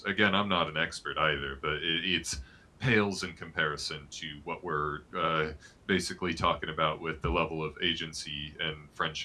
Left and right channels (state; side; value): identical; both; correlation 1.00